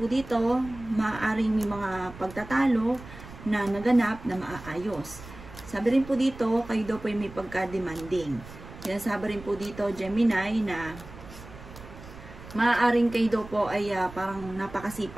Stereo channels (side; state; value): right; noise; rumble, 16 dB below the sound